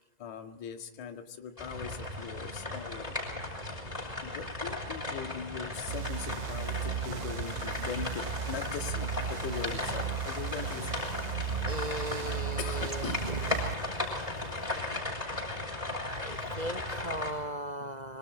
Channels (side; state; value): left; late; 1.9 ms